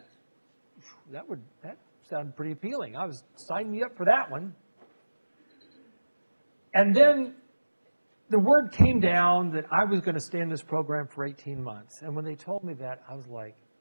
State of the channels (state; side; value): inverted; both; correlation -1.00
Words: sounded pretty appealing. Sign me up for that one. And then the word came down that I was going to stay in this program for 18 months. And when they told me that, I was like,